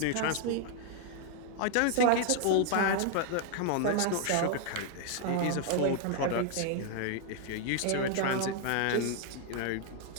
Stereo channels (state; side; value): different; both; correlation 0.00